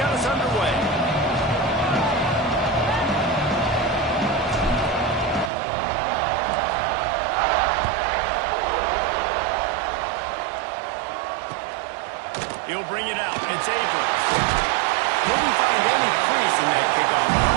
us underway. He'll bring it out. It's Abrams. Couldn't find any crease in that kickoff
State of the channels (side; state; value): left; drops out; at 5.5 s